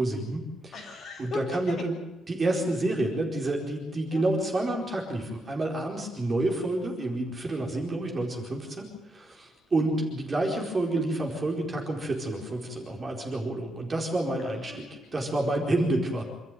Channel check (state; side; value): normal; both; correlation 0.82